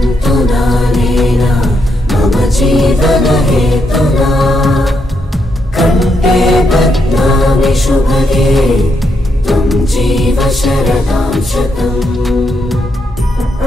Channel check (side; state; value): both; normal; correlation 0.80